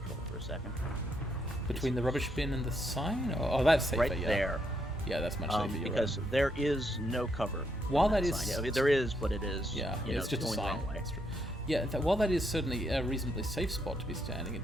for a second. Between the rubbish bin and the sign? Oh, that's safer, Right yeah. there. Yeah, that's much safer. You're Because right. there is no cover. While on that is... sign. I mean, there is, but it is. Yeah, you know, it's just a going the sign. wrong way. That's true. Yeah, while that is certainly a reasonably safe spot to be standing,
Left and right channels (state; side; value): normal; both; correlation 0.77